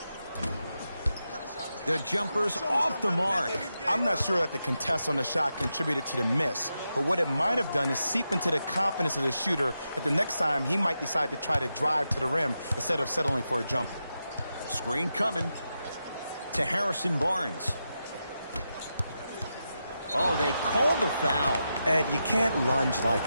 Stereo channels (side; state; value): both; inverted; correlation -0.87